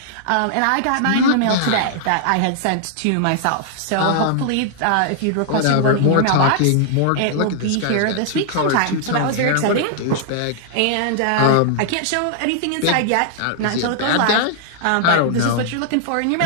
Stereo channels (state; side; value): different; both; correlation -0.01